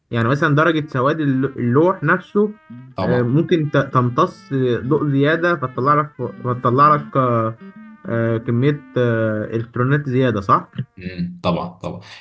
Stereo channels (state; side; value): identical; both; correlation 1.00